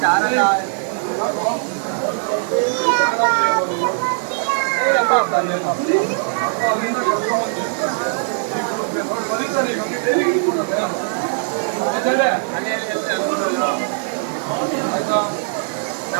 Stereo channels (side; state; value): left; silent; 66 dB below the other